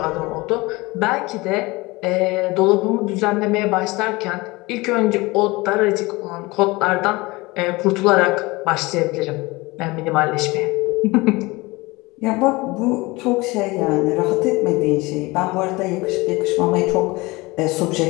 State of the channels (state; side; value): quieter; right; 22.7 dB